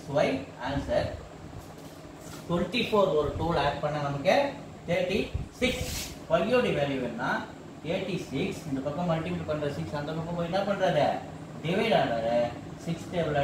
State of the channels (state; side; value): identical; both; correlation 1.00